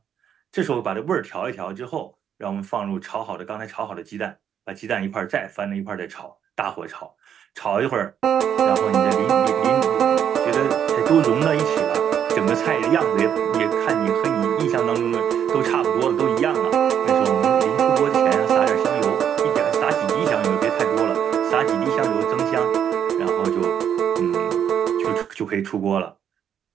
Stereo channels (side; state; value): left; quieter; 8.8 dB